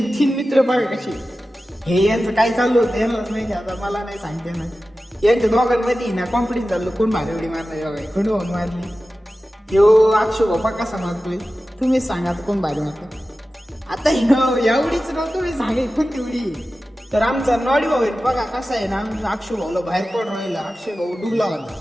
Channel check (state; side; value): normal; both; correlation 0.94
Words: तीन मित्र बघा कसे. हे यांचं काय चालू होतं यांनाच माहिती, आता मला नाही सांगते ना. यांच्या दोघांमध्ये ना कॉन्फिडन्स चाललो कोण भारी उडी मारणार बघा, कोण भाऊ मारली. ह्यो अक्षय बाप्पा कसा मारतोय तुम्हीच सांगा, आता कोण भारी मारतोय. आता एवढीच नव्हतं तुम्ही सांगे कोणती उडी. तर आमचा नॉडी भाऊ आहे बघा कसा आहे ना, आमचा अक्षय भाऊला बाहेर पडून राहिला. अक्षय भाऊ डुबला होता.